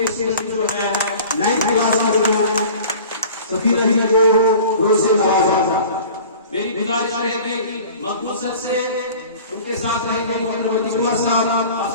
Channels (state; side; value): inverted; both; correlation -0.43